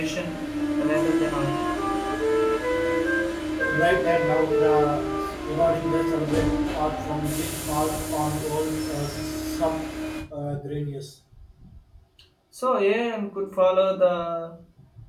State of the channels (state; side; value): identical; both; correlation 1.00